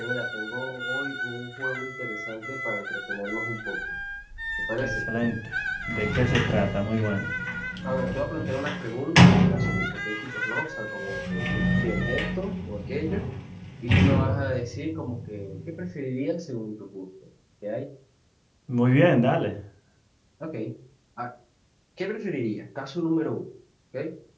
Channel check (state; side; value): identical; both; correlation 1.00